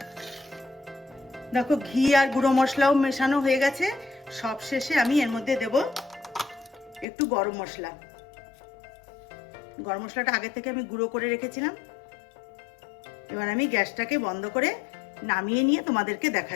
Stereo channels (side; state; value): right; drops out; at 7.1 s